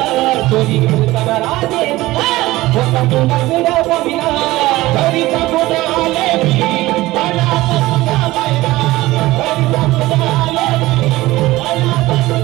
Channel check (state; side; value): quieter; left; 18.2 dB